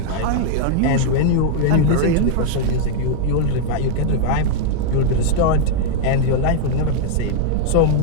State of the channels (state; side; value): different; both; correlation -0.01